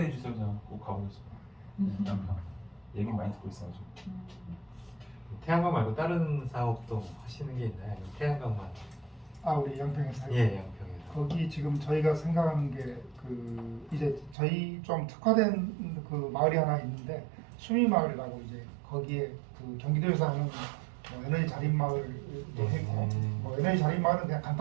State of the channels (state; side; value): drops out; left; at 14.4 s